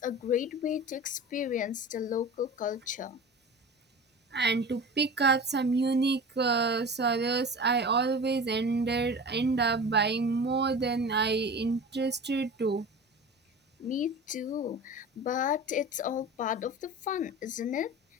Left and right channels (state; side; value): normal; both; correlation 0.34